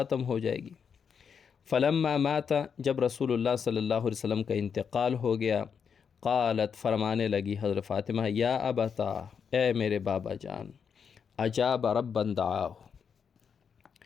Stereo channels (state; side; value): quieter; right; 6.7 dB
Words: ہو جائے گی۔ فلما مات، جب رسول اللہ صلی اللہ علیہ وسلم کا انتقال ہو گیا، قالت، فرمانے لگی حضرت فاطمہ، یا ابتا، اے میرے بابا جان، اجاب ربا دعاہ،